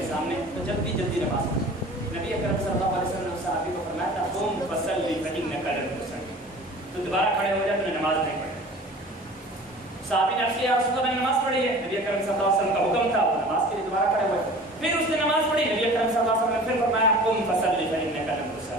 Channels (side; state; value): both; normal; correlation 0.42